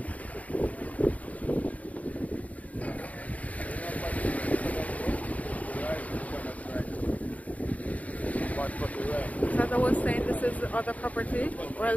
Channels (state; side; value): late; right; 0.070 ms